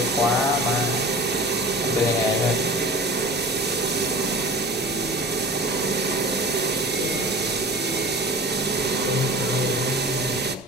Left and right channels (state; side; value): normal; both; correlation 0.38